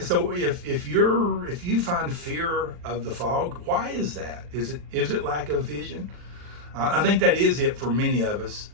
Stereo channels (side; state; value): left; late; 40 ms